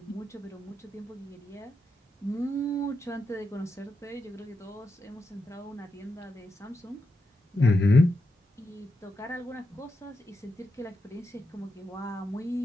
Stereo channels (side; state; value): both; normal; correlation 0.86